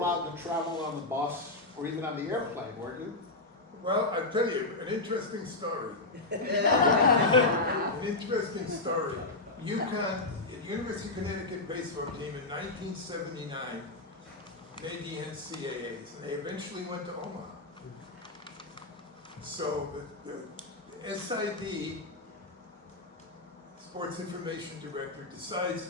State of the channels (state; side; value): quieter; right; 3.0 dB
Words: to travel on the bus or even on the airplane, weren't you? Well, I'll tell you, an interesting story. An interesting story. UConn, University of Connecticut baseball team in 1979 made the NCAAs, and they eventually went to Omaha. So the SID, Sports Information Director,